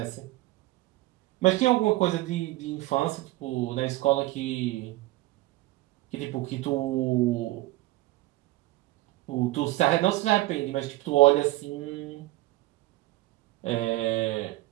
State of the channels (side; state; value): left; quieter; 18.6 dB